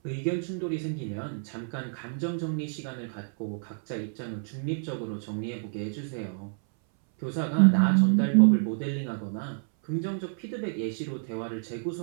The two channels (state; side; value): silent; left; 59 dB below the other